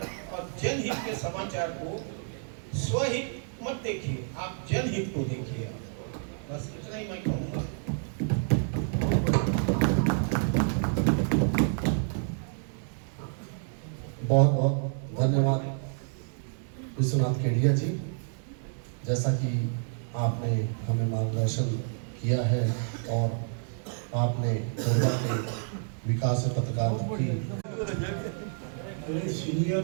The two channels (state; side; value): silent; left; digital silence